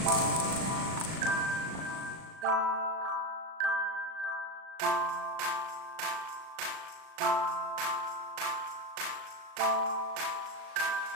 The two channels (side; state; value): left; late; 38 ms